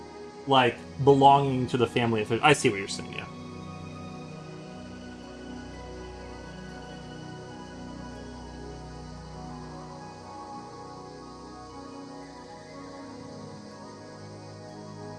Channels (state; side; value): identical; both; correlation 1.00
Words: like belonging to the family? I see what you're saying. Yeah.